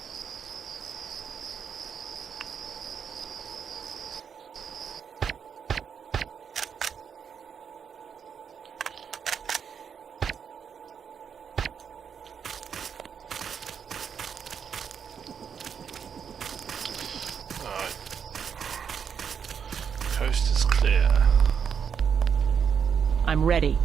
coast is clear. I'm ready.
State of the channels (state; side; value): quieter; left; 7.2 dB